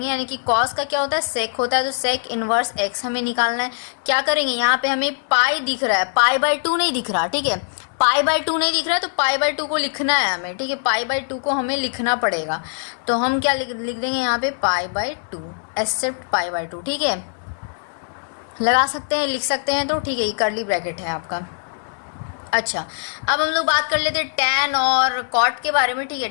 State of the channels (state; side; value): silent; right; digital silence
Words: यानी कि कॉस का क्या होता है, सेक होता है, तो सेक इनवर्स एक्स हमें निकालना है। क्या करेंगे, यहाँ पे हमें पाई दिख रहा है, पाई बाय 2 नहीं दिख रहा, ठीक है। पाई बाय 2 नहीं दिख रहा है, तो पाई बाय 2 को लिखना है हमें, ठीक है। पाई बाय 2 को हमें लिखना पड़ेगा, तो हम क्या लिख देंगे यहाँ पे, pi by 2 except pi by 2, ठीक है। लगा सकते हैं, लिख सकते हैं, तो ठीक है, ये कर्ली ब्रैकेट है आपका। अच्छा, अब हम लोग बात कर लेते हैं टैन और कॉट के बारे में, ठीक है।